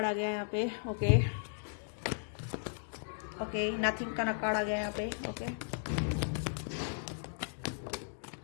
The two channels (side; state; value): right; silent; digital silence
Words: आ गया है यहाँ पे। ओके ओके, नथिंग का कार्ड आ गया है यहाँ पे। Okay,